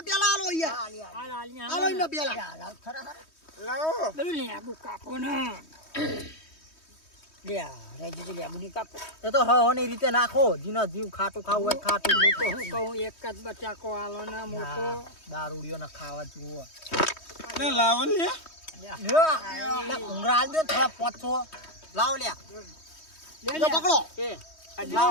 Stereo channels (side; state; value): right; late; 3.2 ms